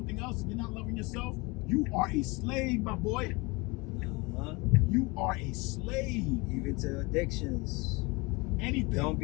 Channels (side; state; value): right; quieter; 25.7 dB